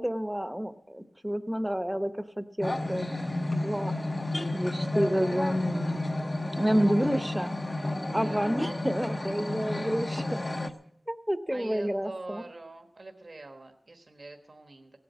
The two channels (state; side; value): normal; both; correlation 0.98